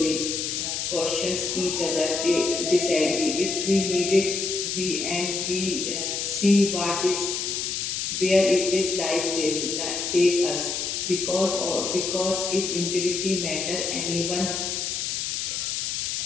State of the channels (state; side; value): noise; left; hiss, 2 dB below the sound